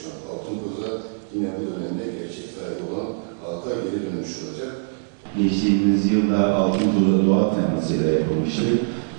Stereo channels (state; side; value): silent; left; digital silence